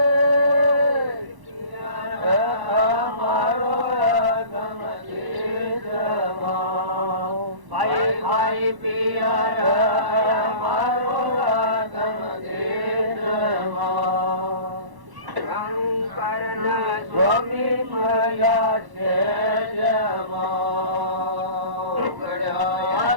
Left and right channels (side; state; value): left; late; 1.1 ms